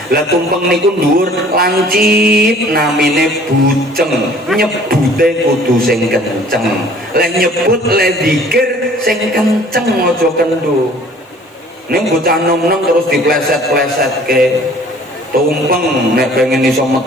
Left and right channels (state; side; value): normal; both; correlation 0.52